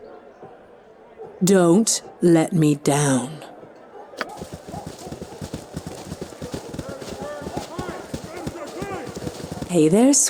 Don't let me down. Hey there,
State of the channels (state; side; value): identical; both; correlation 1.00